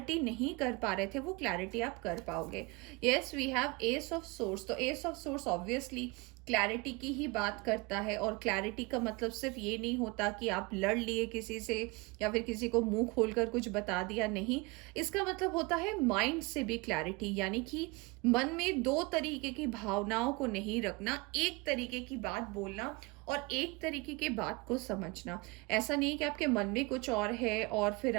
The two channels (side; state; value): left; quieter; 25.5 dB